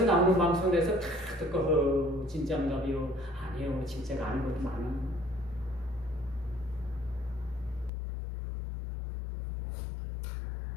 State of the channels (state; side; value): drops out; right; at 7.9 s